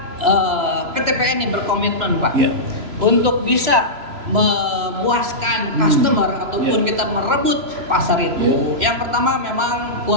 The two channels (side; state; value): left; late; 3.0 ms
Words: PTPN ini berkomitmen, Pak, untuk bisa memuaskan customer ataupun kita merebut pasar itu. Yang pertama memang